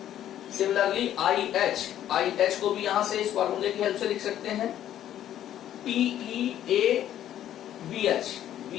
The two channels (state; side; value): quieter; right; 11.5 dB